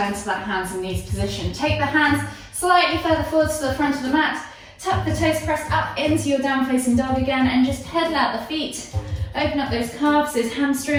to that hands and knees position. Take the hands slightly further forward to the front of the mat. Tuck the toes, press up into your down facing dog again, and just pedal out the feet. Open up those calves, those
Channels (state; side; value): identical; both; correlation 1.00